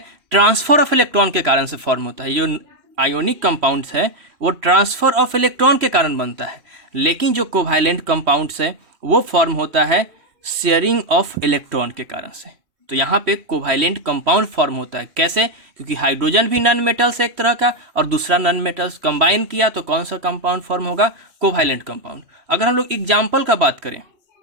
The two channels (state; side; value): late; left; 3.1 ms